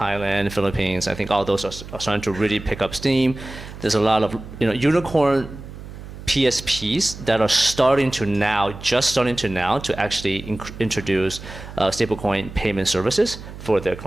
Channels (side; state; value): right; noise; hum, 13 dB below the sound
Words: Philippines, I think all those are starting to really pick up steam. There's a lot of unicorn PSPs that are just starting to now to actually introduce stablecoin payment services for their